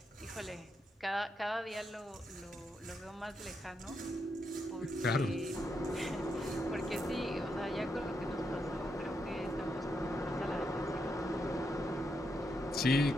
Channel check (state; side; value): normal; both; correlation 0.82